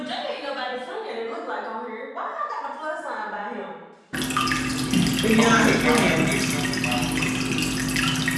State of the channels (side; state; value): both; identical; correlation 1.00